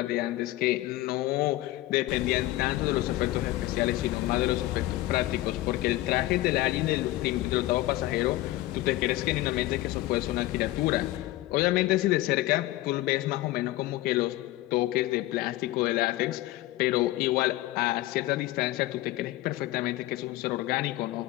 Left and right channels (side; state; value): right; quieter; 17.1 dB